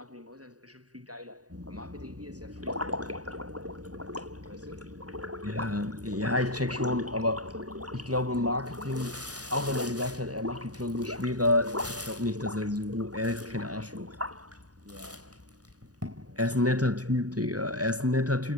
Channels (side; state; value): left; late; 0.68 ms